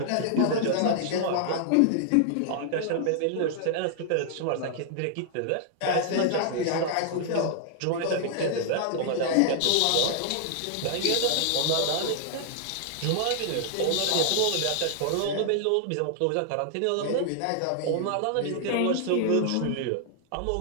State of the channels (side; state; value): both; different; correlation -0.01